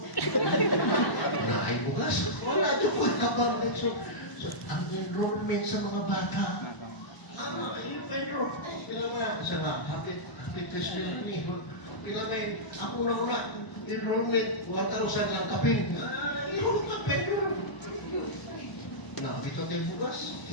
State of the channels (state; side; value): late; right; 1.0 ms